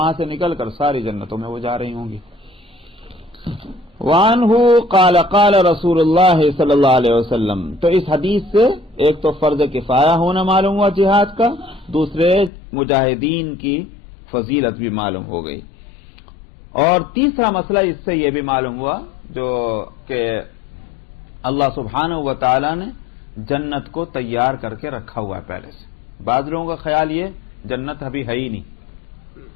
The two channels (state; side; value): drops out; right; at 12.5 s